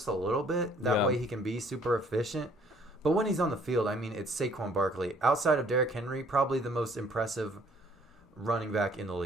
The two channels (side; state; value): both; normal; correlation 0.59